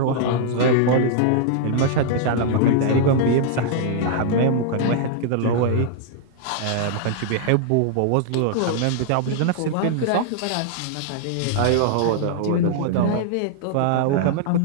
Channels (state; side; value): different; both; correlation -0.01